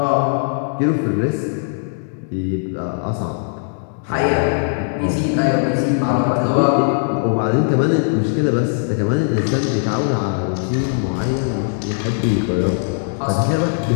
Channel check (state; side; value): silent; right; digital silence